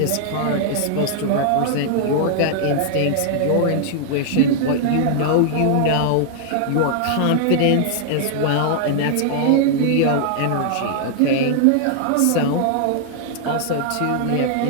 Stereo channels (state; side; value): different; both; correlation -0.01